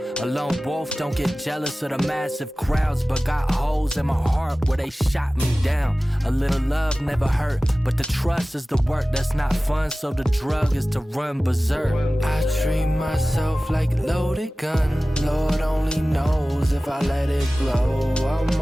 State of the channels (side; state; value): both; normal; correlation 0.97